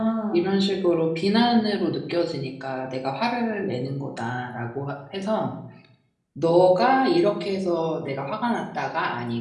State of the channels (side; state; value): both; identical; correlation 1.00